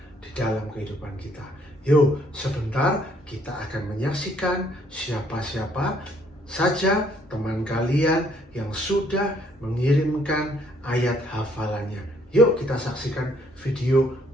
di dalam kehidupan kita. Yuk, sebentar kita akan menyaksikan siapa-siapa saja teman kalian yang sudah mengirimkan ayat hafalannya. Yuk kita saksikan video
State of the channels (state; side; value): normal; both; correlation 0.65